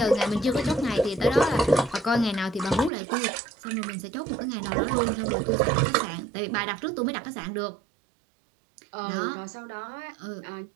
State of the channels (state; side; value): drops out; left; at 2.9 s